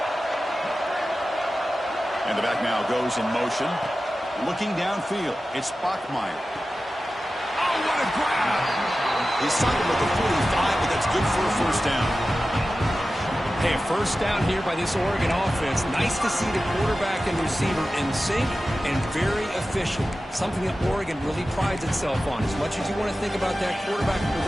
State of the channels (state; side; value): normal; both; correlation 0.94